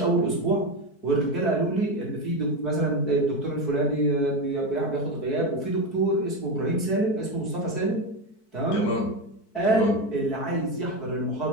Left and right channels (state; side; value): late; right; 4.6 ms